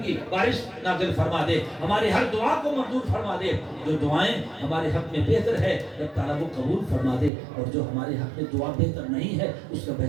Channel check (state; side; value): drops out; left; at 7.3 s